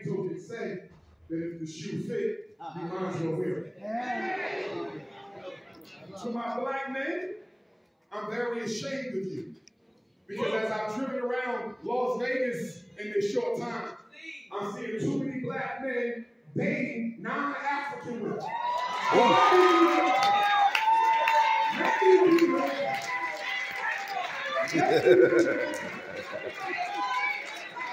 token say that if the shoe fit, you might as well wear it. To my black men, I'm very ashamed of you. Because as I've driven around Las Vegas in this short time, I'm seeing too many black men dating non-African women.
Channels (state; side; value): identical; both; correlation 1.00